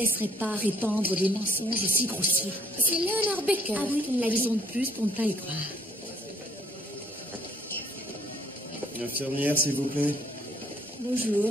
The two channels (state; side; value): normal; both; correlation 0.62